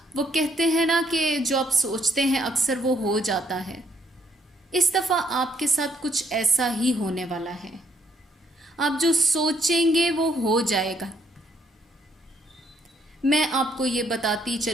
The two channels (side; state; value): both; normal; correlation 0.70